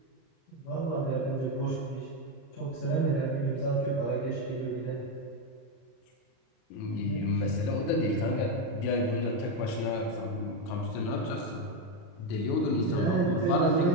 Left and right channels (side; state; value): right; late; 39 ms